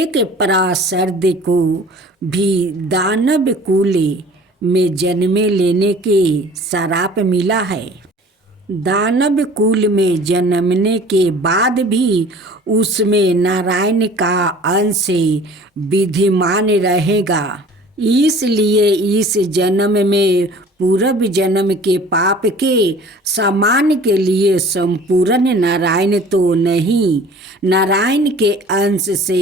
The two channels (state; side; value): normal; both; correlation 0.47